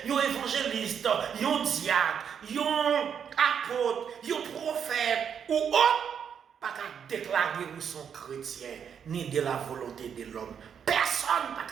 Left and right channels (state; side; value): quieter; left; 7.7 dB